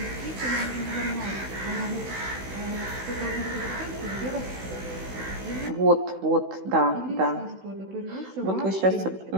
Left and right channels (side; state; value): left; late; 16 ms